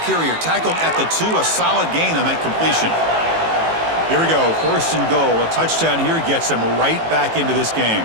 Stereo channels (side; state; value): left; late; 18 ms